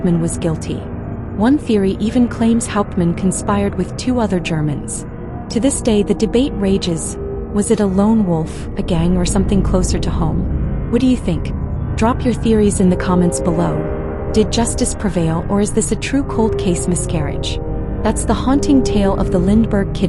was guilty. One theory even claims Hauptmann conspired with 2 other Germans. To this day, the debate rages. Was it a lone wolf, a gang, or something closer to home? What do you think? Drop your theories in the comments below. Did justice prevail, or is this a true cold case miscarriage? That's the haunting tale of the Lindbergh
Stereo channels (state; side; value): identical; both; correlation 1.00